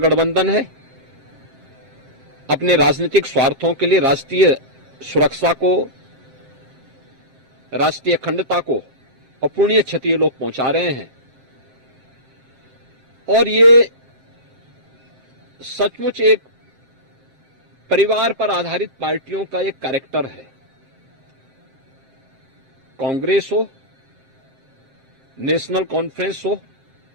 है। अपने राजनीतिक स्वार्थों के लिए राष्ट्रीय सुरक्षा को, राष्ट्रीय अखंडता को अपूर्णीय क्षति ये लोग पहुंचा रहे हैं और ये सचमुच एक परिवार पर आधारित पार्टियों का एक कैरेक्टर है। कांग्रेस हो, नेशनल कॉन्फ्रेंस हो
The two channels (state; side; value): late; left; 7.5 ms